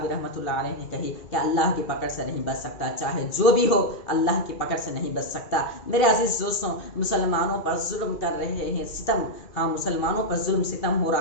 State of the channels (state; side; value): late; right; 2.7 ms